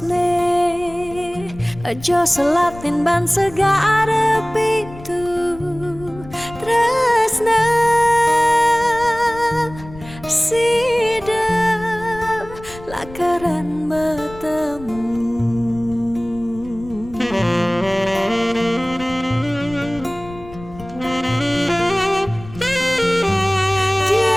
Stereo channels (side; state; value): left; noise; rumble, 17 dB below the sound